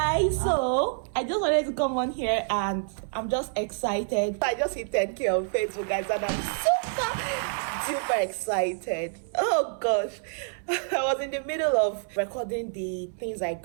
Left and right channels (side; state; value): left; silent; 60 dB below the other